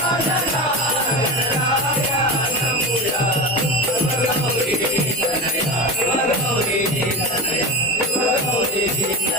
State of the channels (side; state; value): both; normal; correlation 0.23